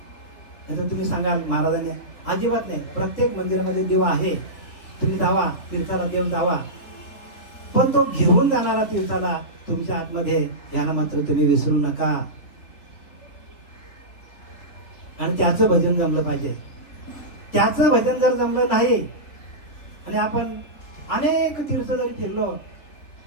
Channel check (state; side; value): late; right; 3.9 ms